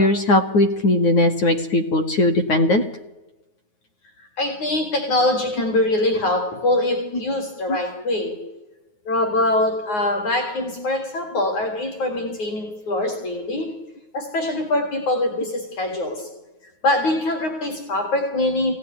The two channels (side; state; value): right; late; 9.5 ms